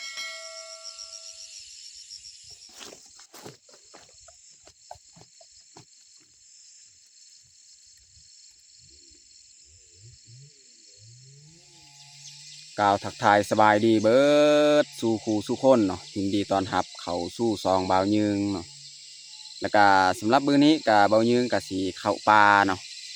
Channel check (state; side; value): identical; both; correlation 1.00